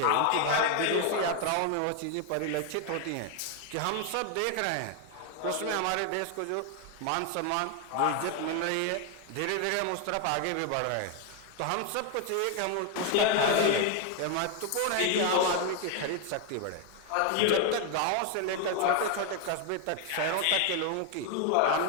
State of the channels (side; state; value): both; different; correlation 0.01